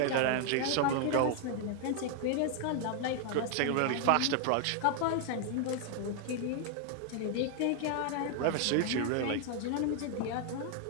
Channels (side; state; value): both; different; correlation 0.00